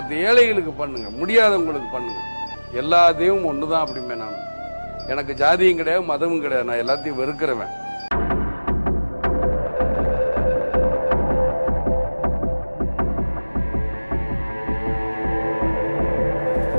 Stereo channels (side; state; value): both; inverted; correlation -1.00